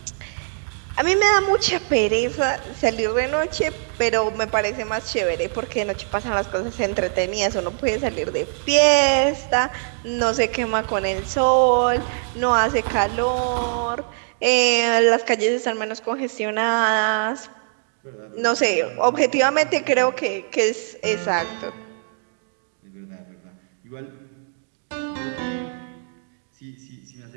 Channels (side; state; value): left; silent; digital silence